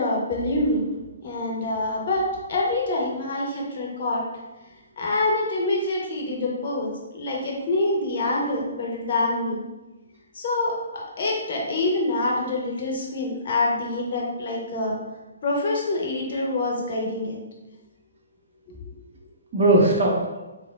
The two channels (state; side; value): inverted; both; correlation -0.47